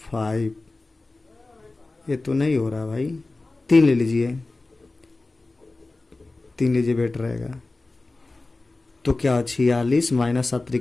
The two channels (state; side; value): quieter; right; 3.2 dB